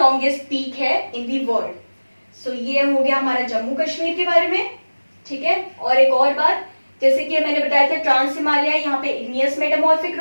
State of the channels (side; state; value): both; inverted; correlation -1.00